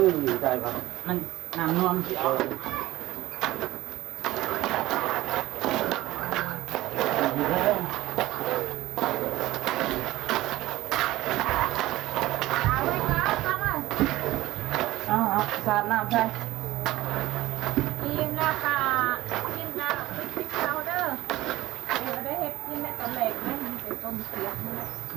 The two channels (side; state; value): left; quieter; 16.7 dB